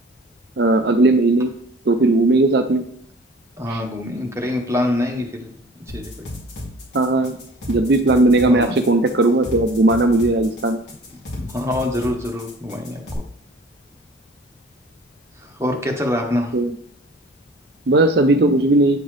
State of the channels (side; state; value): both; normal; correlation 0.46